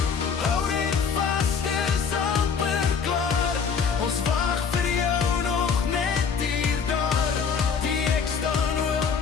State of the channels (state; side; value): quieter; right; 6.1 dB